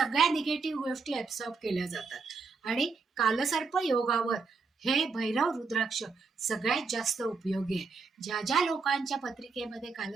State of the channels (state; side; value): quieter; left; 4.6 dB